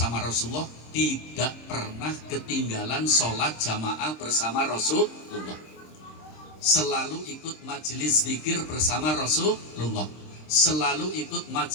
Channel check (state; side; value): late; right; 26 ms